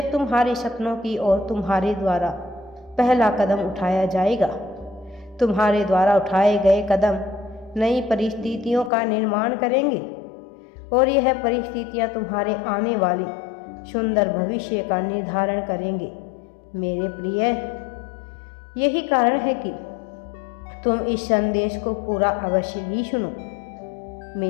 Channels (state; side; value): drops out; right; at 8.9 s